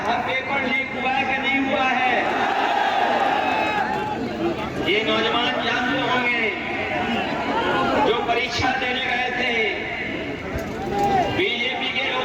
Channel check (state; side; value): identical; both; correlation 1.00